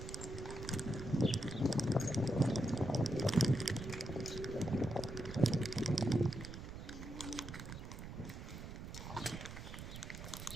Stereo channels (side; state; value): right; noise; rumble, 9 dB below the sound